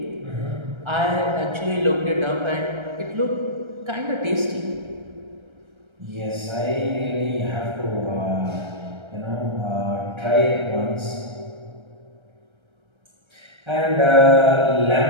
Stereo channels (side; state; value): left; late; 1.3 ms